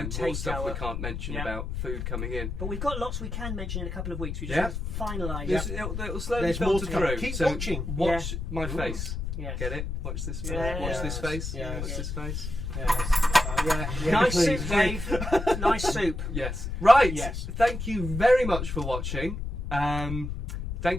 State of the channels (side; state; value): left; noise; rumble, 4 dB below the sound